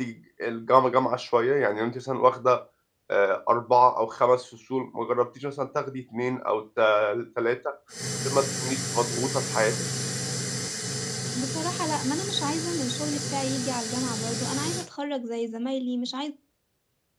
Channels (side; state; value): both; identical; correlation 1.00